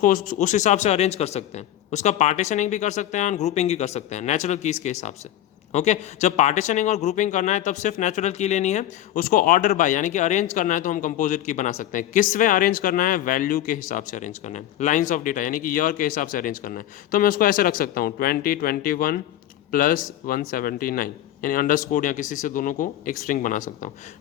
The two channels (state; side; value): quieter; right; 12.4 dB